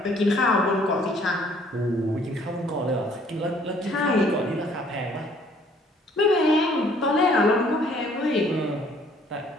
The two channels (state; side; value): normal; both; correlation 0.60